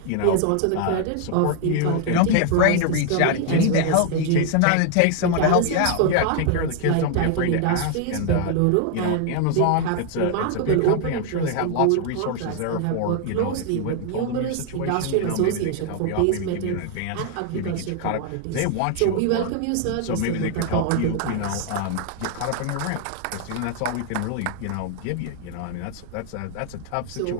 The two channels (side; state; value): both; different; correlation 0.00